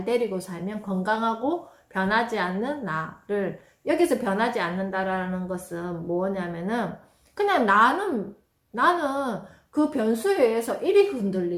데리고 살면 건강하고 변하지 않는 나를 여기서 변하지 않는다라는 것은 뭐냐면은 그냥 나는 그 변수에 의해서 이리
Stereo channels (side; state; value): both; identical; correlation 1.00